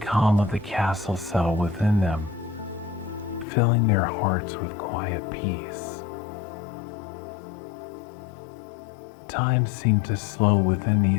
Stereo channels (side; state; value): right; drops out; at 3.5 s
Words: of the castle settle within them, filling their hearts with quiet peace. Time seemed to slow within